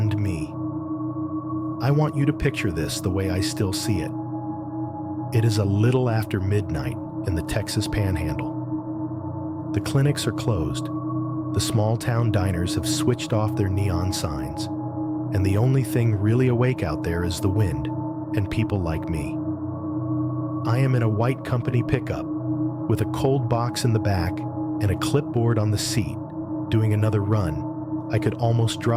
me. I want you to picture this the way I still see it. It is a little after midnight in the Texas Panhandle. The clinics are closed. The small-town diners have switched off their neon signs. And the only thing really awake out there is the wind and people like me. I am in a white company pickup with a cold box in the back and a clipboard on the seat, doing another run. I could almost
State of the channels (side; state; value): both; identical; correlation 1.00